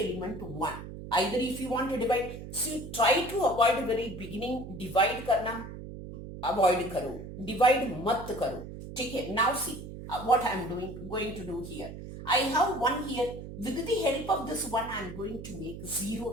1. Either if you want to divide, so try to avoid very beginning, divide karna, avoid karo, divide mat karo. Okay, now see what I am going to do here. I have 1 here. With the help of this 1, I am going to make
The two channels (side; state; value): right; noise; hum, 11 dB below the sound